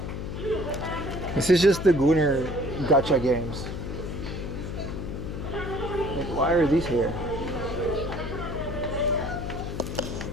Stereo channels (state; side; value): noise; left; hum, 6 dB below the sound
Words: This is just the Gooner gacha games. Like, why are these here?